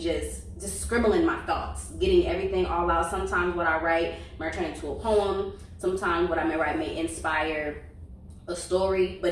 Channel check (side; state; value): both; identical; correlation 1.00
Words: scribbling my thoughts, getting everything all out. Sometimes what I write might turn into a poem. Sometimes what I may write may inspire a story,